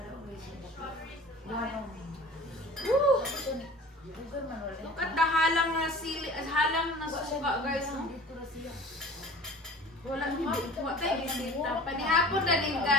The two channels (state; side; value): normal; both; correlation 0.42